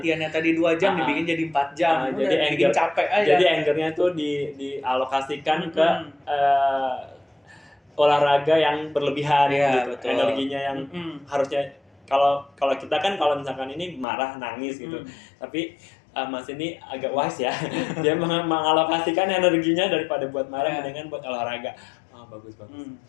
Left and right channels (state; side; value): drops out; right; at 14.1 s